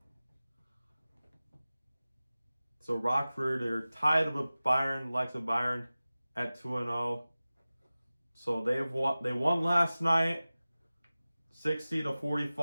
Rockford, they're tied with Byron, likes of Byron, at 2-0. So they won last night,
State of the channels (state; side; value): inverted; both; correlation -0.97